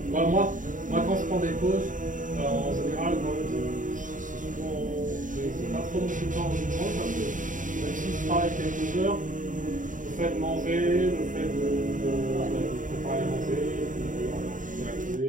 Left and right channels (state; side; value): late; left; 0.38 ms